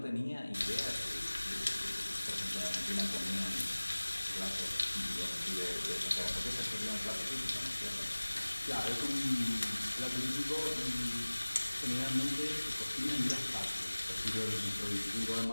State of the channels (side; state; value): both; inverted; correlation -1.00